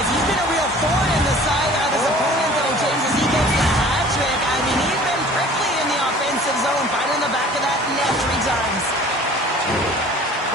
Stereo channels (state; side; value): normal; both; correlation 0.48